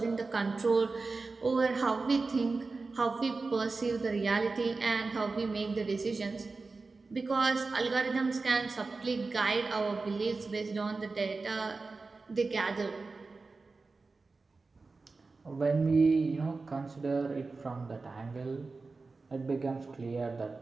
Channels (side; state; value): left; quieter; 3.9 dB